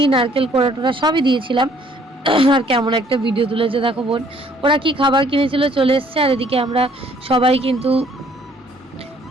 নারকেল কোড়া টোড়া সবই দিয়েছিলাম। আর কেমন একটা ভিডিও তুলেছে দেখো বোন, ওরা কি খাবার কিনেছিল চলে এসছে, আর এদিকে আমরা সবাই কিন্তু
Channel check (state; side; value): normal; both; correlation 0.61